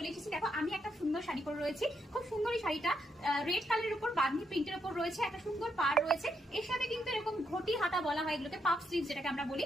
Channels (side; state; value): both; normal; correlation 0.79